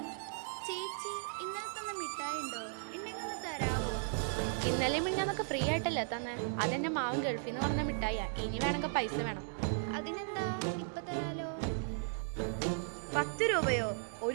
ചേച്ചി, ഇന്നലെ തന്ന മിഠായി ഉണ്ടോ? ഉണ്ടെങ്കിൽ ഒന്ന് തരാവോ? ഇന്നലെ മിഞ്ഞാന്നൊക്കെ ഫ്രീ ആയിട്ടല്ലേ തന്നെ? അതെന്നെ മാവൻ ഗൾഫിൽ നിന്ന് പറഞ്ഞ മിഠായിയാ. ഇനി വേണമെങ്കിൽ പൈസ വേണം. അതിനെന്താ, ഇപ്പൊ തരാലോ. 10 രൂപയോ?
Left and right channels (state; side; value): silent; left; digital silence